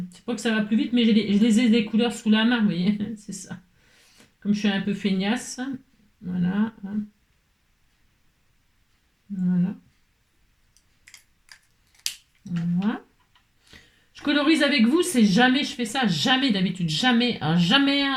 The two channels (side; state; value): both; identical; correlation 1.00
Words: C'est pas que ça va plus vite, mais je les ai des couleurs sous la main, vous voyez. C'est ça. Comme je suis un peu feignasse. Voilà. Voilà. Voilà. Je colorise avec vous, c'est jamais je fais ça, jamais d'habitude, jamais, jamais,